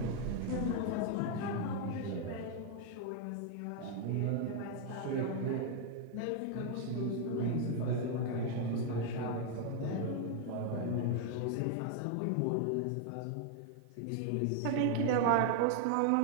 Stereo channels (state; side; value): different; both; correlation 0.00